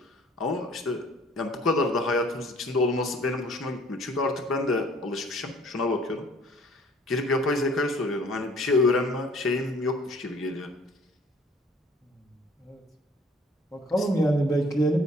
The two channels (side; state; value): both; normal; correlation 0.55